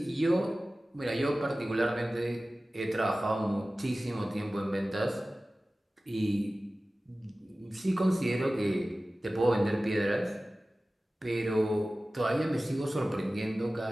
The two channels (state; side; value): normal; both; correlation 0.96